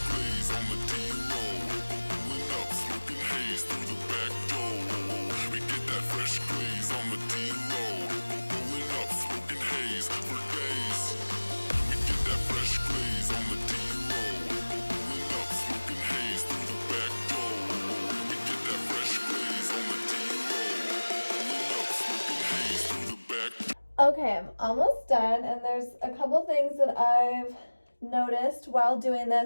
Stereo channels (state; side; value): inverted; both; correlation -1.00